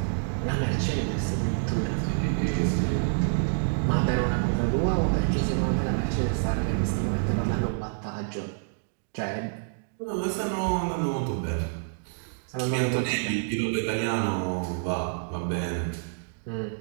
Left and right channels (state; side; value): silent; left; digital silence